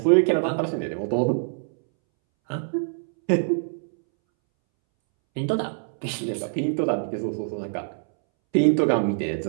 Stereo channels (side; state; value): left; silent; 62 dB below the other